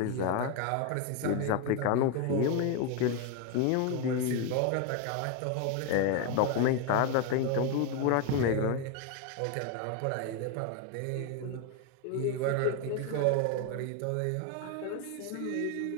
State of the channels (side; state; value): both; different; correlation 0.01